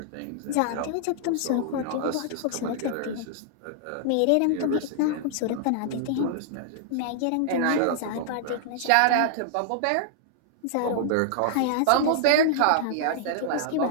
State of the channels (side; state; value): both; different; correlation -0.01